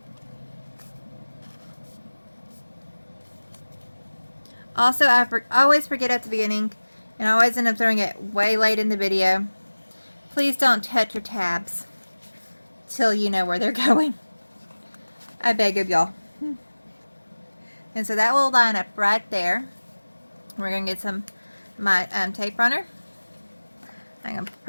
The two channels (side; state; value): both; inverted; correlation -1.00